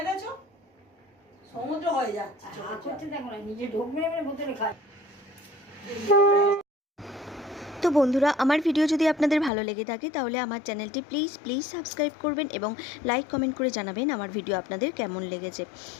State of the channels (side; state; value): right; drops out; at 9.5 s